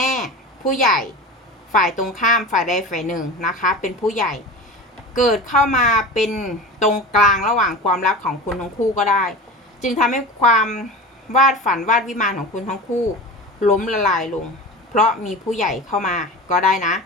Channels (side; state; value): both; normal; correlation 0.32